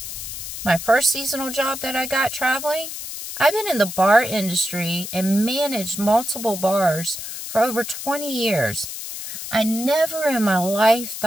my first seasonal job that I got traveling, I've been in the bar industry and managed multiple bars for over 20 years. I never in my life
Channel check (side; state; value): left; noise; hiss, 8 dB below the sound